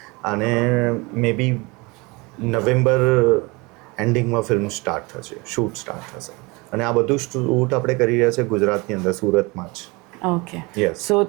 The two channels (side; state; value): left; quieter; 26.0 dB